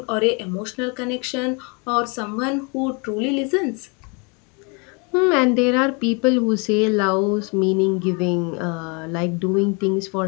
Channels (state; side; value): quieter; right; 32.4 dB